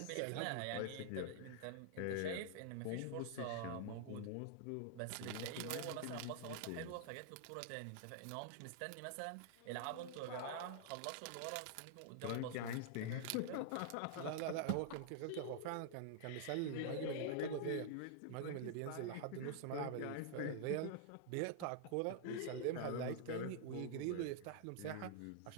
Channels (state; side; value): different; both; correlation -0.01